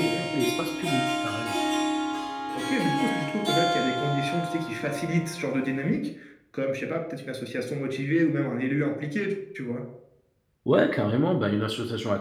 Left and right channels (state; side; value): identical; both; correlation 1.00